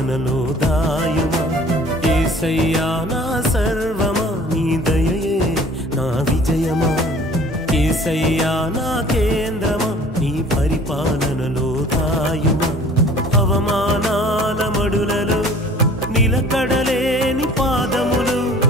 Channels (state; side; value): normal; both; correlation 0.50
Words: దాయుమా యేసయ్యా నా సర్వమా నీ దయయే నా విజయమా యేసయ్యా నా కేంద్రమా నీ పరిపాలనలో దాయుమా అవమానాల మడులలో నిలకడలేని పాదములు